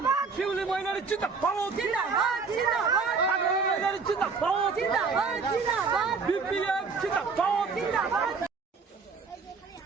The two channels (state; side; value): quieter; left; 4.8 dB